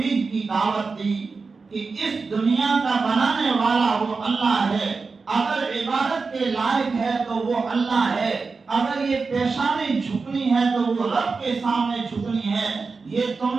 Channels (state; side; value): quieter; left; 4.4 dB